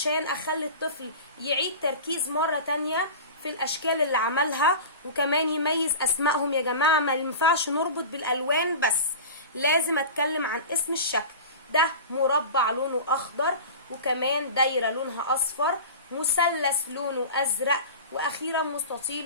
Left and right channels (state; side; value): inverted; both; correlation -0.32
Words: اخلي الطفل يعيد تركيز مره تانية في الاشكال اللي عملها، وكمان يميز اسمائهم. يا جماعه ما ينفعش نربط بالالوان بس، لازم اتكلم عن اسم الشكل. ده مربع لونه اخضر، وكمان دايره لونها اصفر، مثلث لونه ازرق، واخيرا